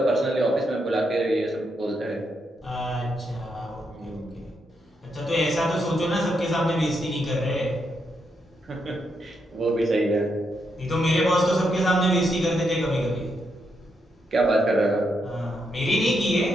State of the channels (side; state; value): both; normal; correlation 0.80